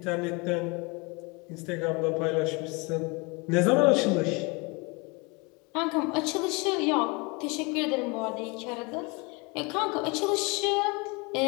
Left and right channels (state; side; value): quieter; right; 28.3 dB